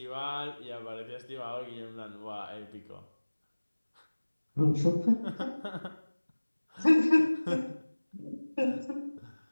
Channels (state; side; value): inverted; both; correlation -1.00